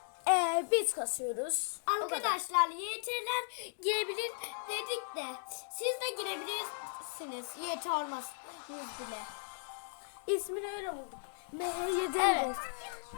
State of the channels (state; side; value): silent; right; digital silence